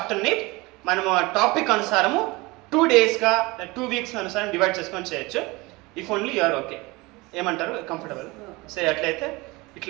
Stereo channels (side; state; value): left; quieter; 23.3 dB